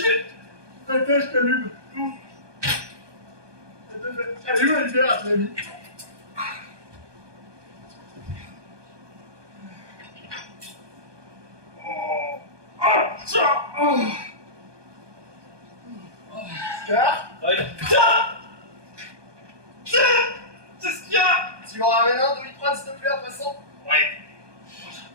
vais... Attends, je t'allume. Allume la lumière à ton ami. Scar, Ouais. Tiens, c'est ce qu'il y a. tu m'en ramènes un Doliprane, s'il te plaît, en passant? Ouais.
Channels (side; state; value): left; late; 1.2 ms